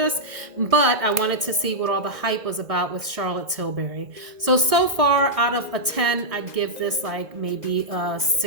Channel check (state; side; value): late; left; 2.0 ms